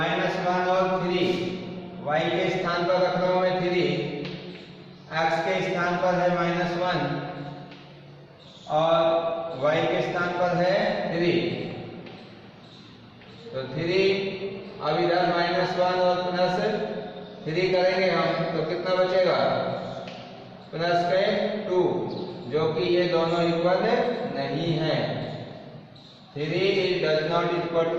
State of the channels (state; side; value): identical; both; correlation 1.00